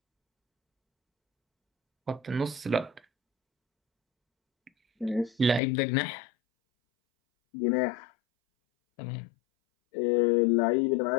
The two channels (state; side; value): drops out; right; at 5.6 s